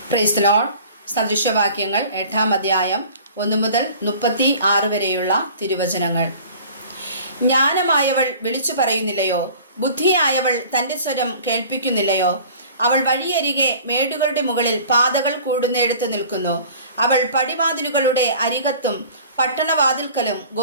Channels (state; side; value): inverted; both; correlation -0.45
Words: Price the lord. സദൃശവാക്യങ്ങൾ 8-ാം അധ്യായം 1 മുതൽ 36 വരെയുള്ള തിരുവചനങ്ങൾ. ജ്ഞാനമായവൾ വിളിച്ചു പറയുന്നില്ലയോ? ബുദ്ധിയായവൾ തൻ്റെ സ്വരം കേൾപ്പിക്കുന്നില്ലയോ? അവൾ വഴിയരികെ മേടുകളുടെ മുകളിൽ പാതകൾ കൂടുന്നിടത്ത് നിൽക്കുന്നു. അവൾ പടിവാതിലുകളുടെ അരികത്തും പട്ടണവാതിൽക്കലും